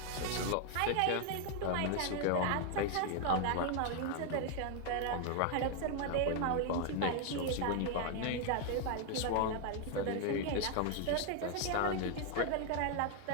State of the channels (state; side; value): different; both; correlation 0.00